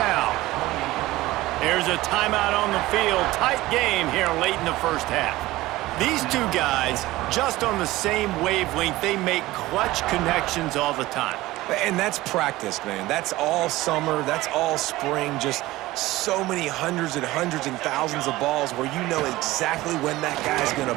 There's a timeout on the field. Tight game here late in the first half. These two guys, just on the same wavelength, they make clutch connections all the time. And that's practice, man. That's all summer. That's all spring. Just so many hundreds and thousands of balls where you know exactly when that guy's going to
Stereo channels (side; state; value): left; quieter; 17.9 dB